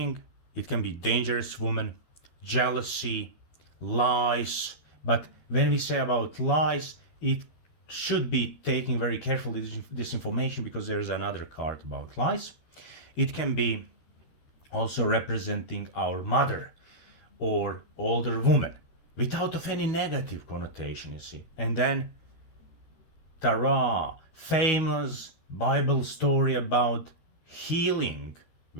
It can be dangerous woman, jealousy, lies. But when we say about lies, it should be taken very carefully, this information, because there is another card about lies. It can be also representing our mother or older woman without of any negative connotation, you see. And then Tara, famous Bible story about healing,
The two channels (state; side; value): late; right; 12 ms